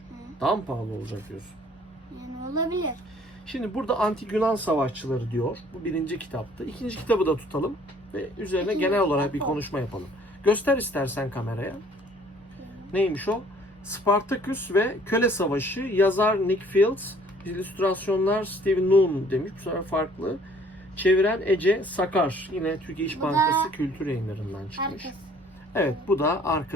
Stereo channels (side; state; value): both; normal; correlation 0.57